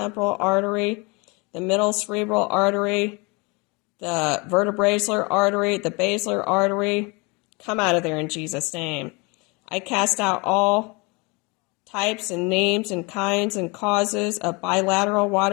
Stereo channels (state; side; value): quieter; right; 28.4 dB